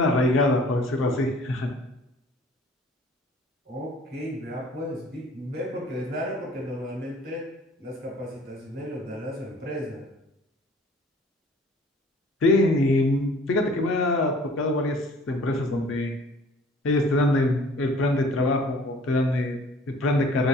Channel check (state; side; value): normal; both; correlation 0.52